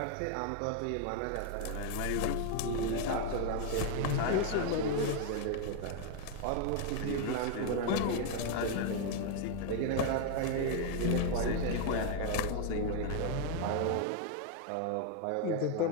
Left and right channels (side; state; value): both; different; correlation 0.00